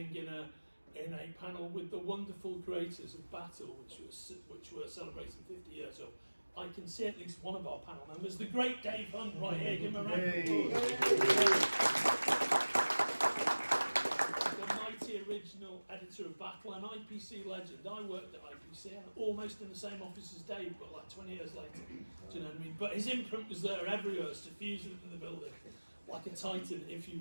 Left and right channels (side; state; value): both; inverted; correlation -1.00